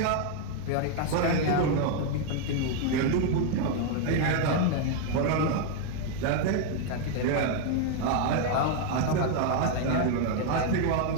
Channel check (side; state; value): both; different; correlation 0.00